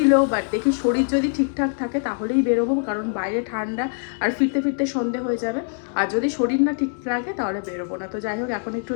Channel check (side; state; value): right; silent; digital silence